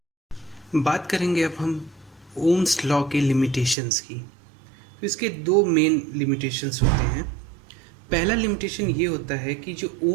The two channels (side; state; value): left; drops out; at 3.8 s